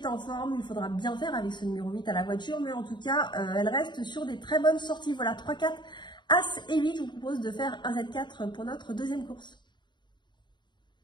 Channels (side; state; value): right; late; 0.22 ms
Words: en forme. Il faudra bien faire avec ce numéro 8 à la voiture. Mais en tout cas, elle reste sur des très bonnes sorties. Voilà, 3, 4, As et 8. Je vous propose de faire un Z4 pour notre deuxième course.